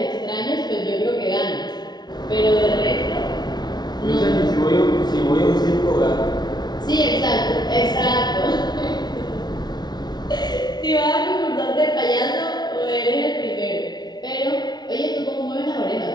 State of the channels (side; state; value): right; late; 0.20 ms